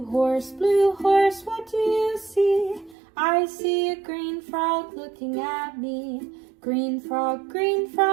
horse, what do you see? I see a green frog looking at me. Green frog,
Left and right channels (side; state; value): left; drops out; at 3.0 s